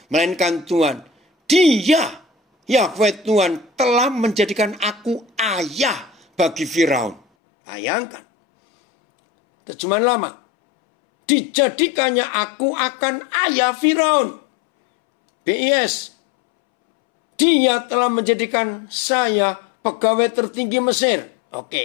melainkan Tuhan. Dia, Yahweh Tuhan, telah menjadikan aku ayah bagi Firaun. Bayangkan. Terjemahan lama. Dijadikannya aku akan ayah Firaun. BIS. Dia telah menjadikan saya pegawai tertinggi Mesir.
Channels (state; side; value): drops out; right; at 7.2 s